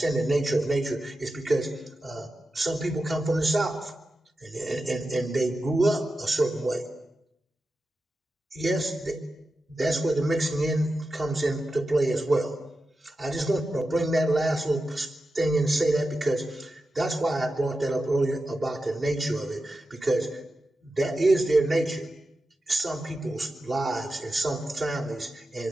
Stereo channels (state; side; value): normal; both; correlation 0.91